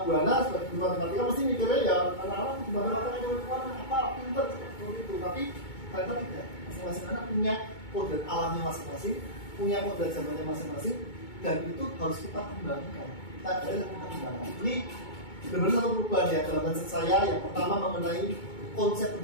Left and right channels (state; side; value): late; right; 2.2 ms